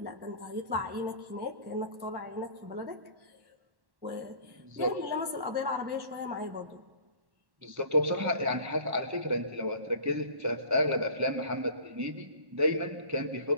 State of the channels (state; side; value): late; left; 1.1 ms